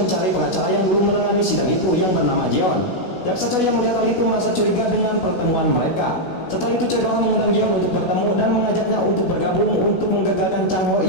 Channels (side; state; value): right; late; 16 ms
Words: pengacara yang dulu menangani sidang itu yang bernama Jeon. Jaksa Choi yang melihat hal itu merasa curiga dengan pertemuan mereka. Setelah itu Choi Do-ha mengundang Jeon untuk bertemu dan mengajaknya untuk bergabung untuk menggagalkan Chang Ho